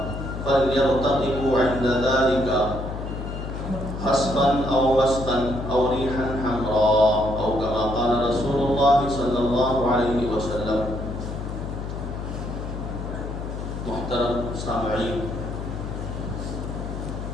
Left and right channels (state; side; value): noise; left; hum, 6 dB below the sound